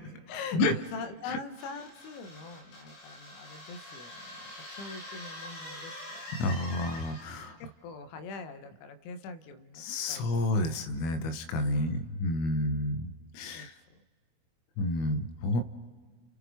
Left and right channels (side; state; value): right; late; 25 ms